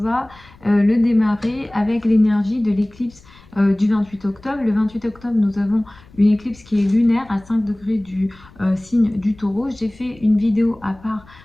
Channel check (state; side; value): noise; left; rumble, 25 dB below the sound